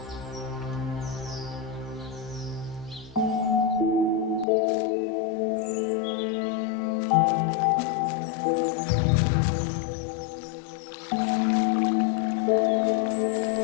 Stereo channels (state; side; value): drops out; right; at 4.5 s